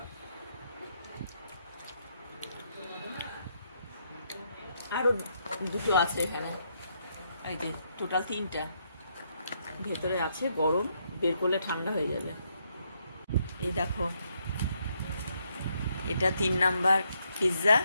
আরো 2টো আছে এখানে, এই যে টোটাল 3টা ভেতরে আছে, গরম, বের করলে ঠান্ডা হয়ে যাবে। এই দেখো, এটা 3 নাম্বার পিৎজা।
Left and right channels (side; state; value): both; inverted; correlation -0.75